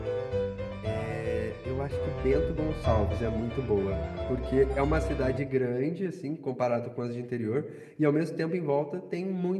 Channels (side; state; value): both; identical; correlation 1.00